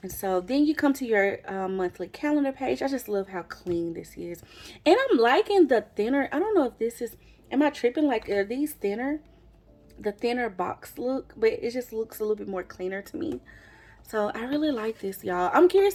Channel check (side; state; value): both; identical; correlation 1.00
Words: And so then you come to your monthly calendar page. I just love how clean this is. And I'm liking the thinner, I don't know if this is, am I tripping? Like, are these thinner? The thinner box look, but it just looks a little bit more cleaner to me. So I really like this, y'all. I'm curious